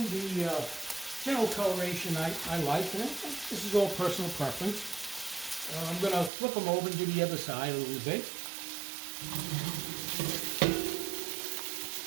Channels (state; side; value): drops out; left; at 6.3 s